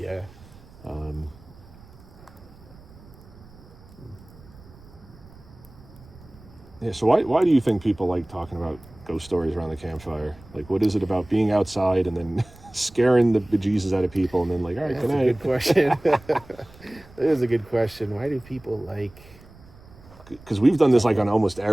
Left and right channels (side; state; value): right; noise; rumble, 22 dB below the sound